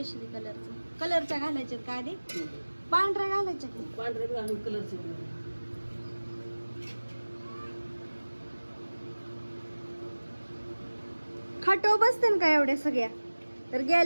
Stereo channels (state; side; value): inverted; both; correlation -1.00